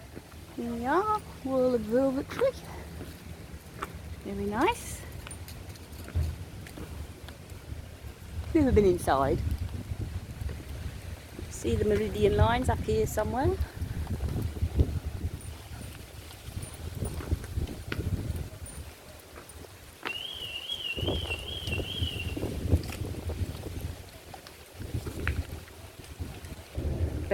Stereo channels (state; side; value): identical; both; correlation 1.00